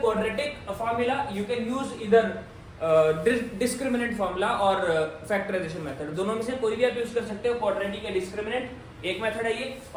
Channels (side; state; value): both; identical; correlation 1.00